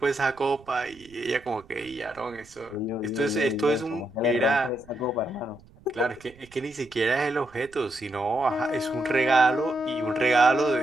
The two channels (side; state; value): right; noise; rumble, 25 dB below the sound